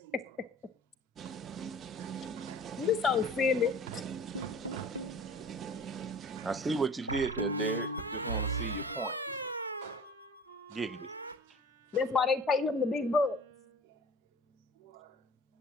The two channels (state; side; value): normal; both; correlation 0.43